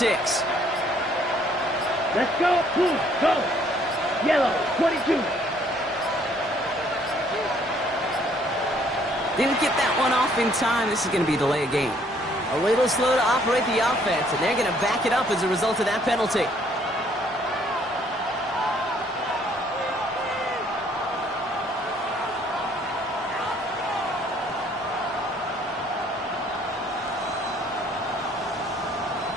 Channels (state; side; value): normal; both; correlation 0.63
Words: Let's go. Blue, go. Yellow, 22. Didn't get that one off in time. This is going to be a delay of game. A little slow to operate the offense, and they're going to back it up as a result of that penalty.